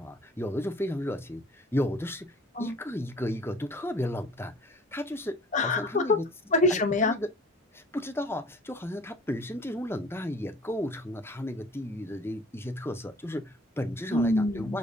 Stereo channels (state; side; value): normal; both; correlation 0.49